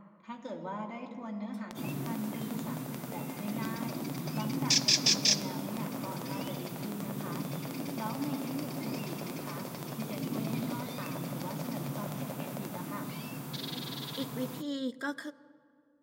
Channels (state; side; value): identical; both; correlation 1.00